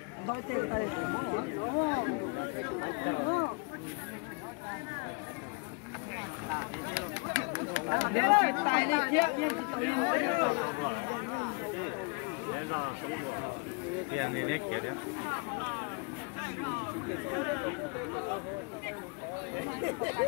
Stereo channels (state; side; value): quieter; right; 32.5 dB